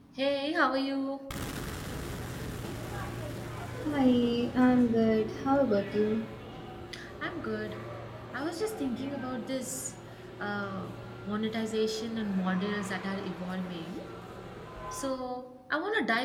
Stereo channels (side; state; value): both; identical; correlation 1.00